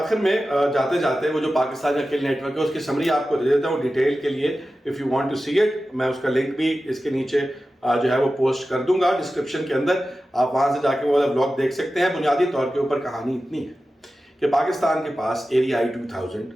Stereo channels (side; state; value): both; normal; correlation 0.94